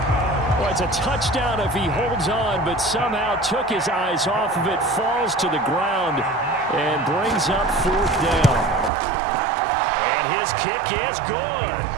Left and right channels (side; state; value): left; drops out; at 8.9 s